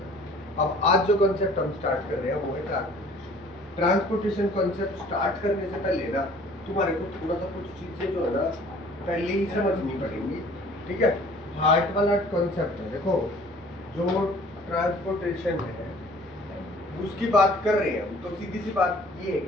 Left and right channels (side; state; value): both; normal; correlation 0.52